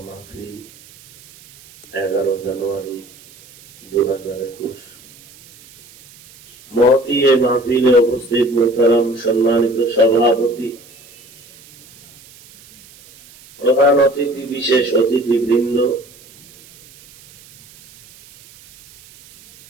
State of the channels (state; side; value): noise; right; hiss, 24 dB below the sound